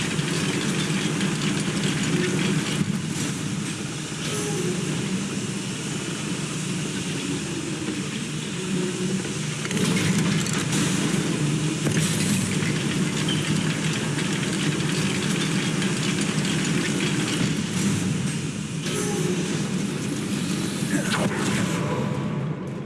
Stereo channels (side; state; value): both; identical; correlation 1.00